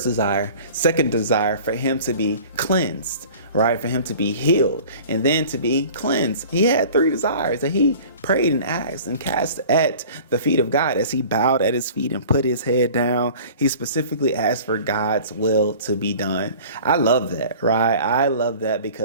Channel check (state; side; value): inverted; both; correlation -0.44